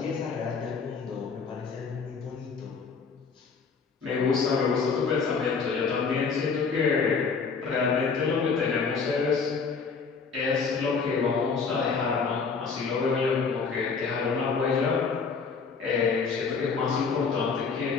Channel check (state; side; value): quieter; right; 5.2 dB